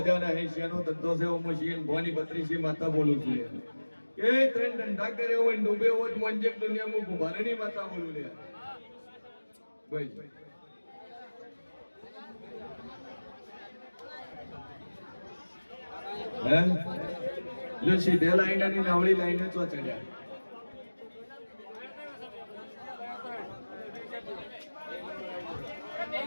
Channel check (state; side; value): inverted; both; correlation -1.00